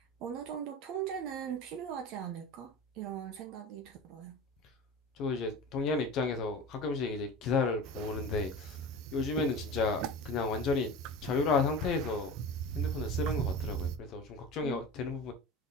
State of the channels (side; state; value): both; normal; correlation 0.32